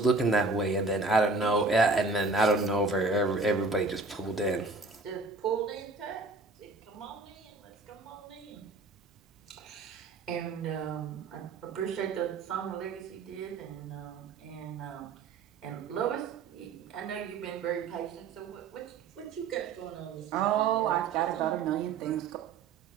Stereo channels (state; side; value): quieter; left; 3.9 dB